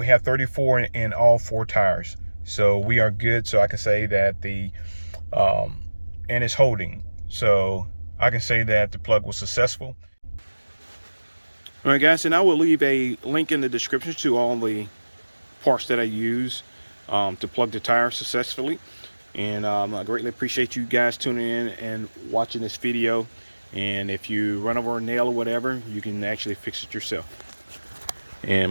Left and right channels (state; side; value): inverted; both; correlation -1.00